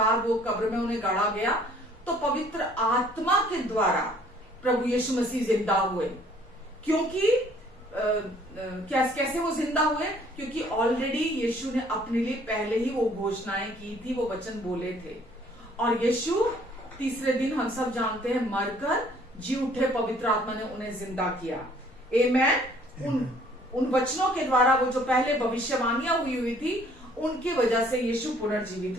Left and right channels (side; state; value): both; normal; correlation 0.59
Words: वो कब्र में उन्हें गाड़ा गया, तो पवित्र आत्मा के द्वारा प्रभु यीशु मसीह जिंदा हुए। क्योंकि कैसे वो जिंदा हुए? क्योंकि ऑलरेडी यीशु ने अपने लिए पहले ही वो घोषणाएं की थी, वो वचन बोले थे। और यीशु तीसरे दिन, हम सब जानते हैं, मरकर जी उठे, पवित्र आत्मा ने उन्हें जिंदा किया। आमेन। उन वचनों के द्वारा, वो जो पहले भविष्यवाणियां हुई थी, उनकी वजह से यीशु पुनर्जीवित